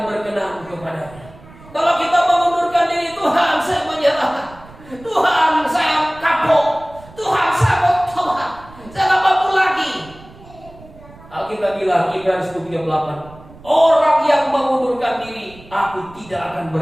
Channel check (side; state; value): right; noise; rumble, 21 dB below the sound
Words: berkenan kepadanya. Kalau kita mengundurkan diri, Tuhan saya menyerah, Tuhan saya kapok, Tuhan saya mau tobat, saya tak mampu lagi. Alkitab bilang Ibrani 10:38, orang yang mengundurkan diri, aku tidak akan